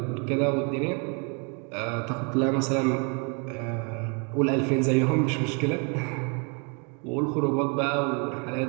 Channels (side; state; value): left; quieter; 35.2 dB